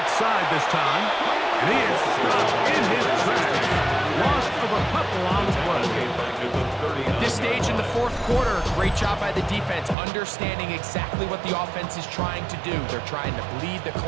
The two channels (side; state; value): left; drops out; at 10.0 s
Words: side this time. And he is stopped in his tracks. Loss of a couple on the play. At this stage in the fourth quarter, great job by the defense, understanding exactly what the offense is trying to do. They're trying to bleed the